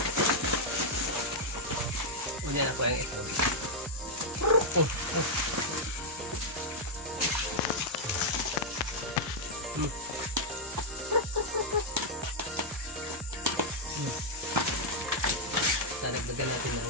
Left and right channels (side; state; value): both; normal; correlation -0.05